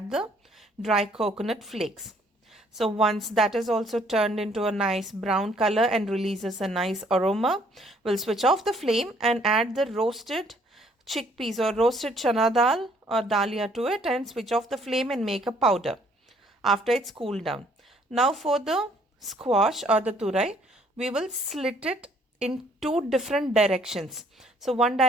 the dry coconut flakes. So once that is also turned into a nice brown color and releases a nice aroma, we'll switch off the flame and add the roasted chickpeas or roasted chana dal or dalia to it, and switch off the flame and make a powder after it's cooled down. Now for the squash or the turai, we will slit it in 2 different directions. So one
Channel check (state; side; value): normal; both; correlation 0.63